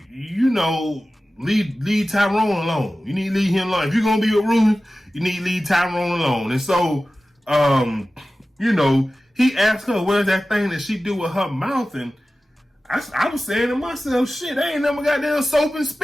leave Tyrone alone. You need to leave him alone. If you're going to be with Ruth, you need to leave Tyrone alone. And so, he asked her, what is that thing that she do with her mouth? And I was saying to myself, shit, I ain't never got that soap and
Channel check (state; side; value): normal; both; correlation 0.96